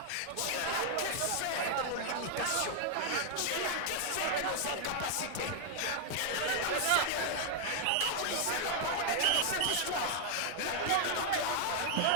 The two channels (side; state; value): both; different; correlation 0.00